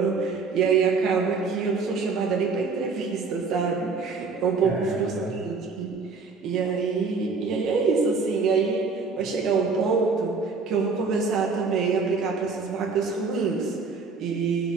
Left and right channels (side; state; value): left; quieter; 4.6 dB